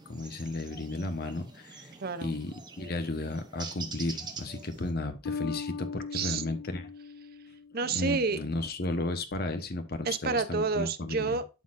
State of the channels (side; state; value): both; normal; correlation 0.35